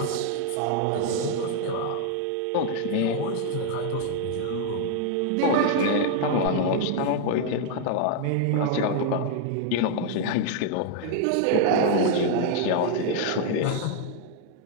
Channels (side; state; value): both; different; correlation 0.00